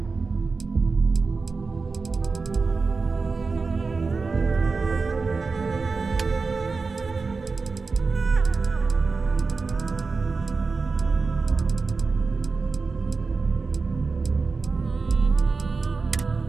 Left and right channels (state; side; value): quieter; left; 4.3 dB